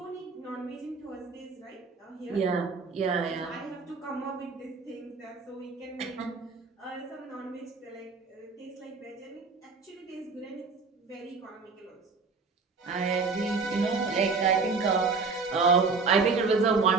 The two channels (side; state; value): left; quieter; 4.5 dB